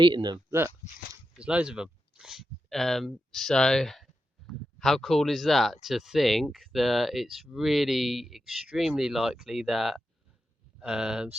them. Look, there's loads of them. So how cool is that, to think that it's really extremely likely that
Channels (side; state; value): both; normal; correlation 0.88